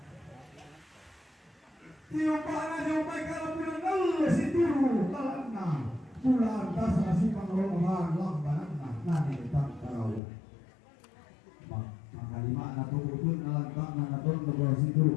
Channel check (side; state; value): right; drops out; at 10.2 s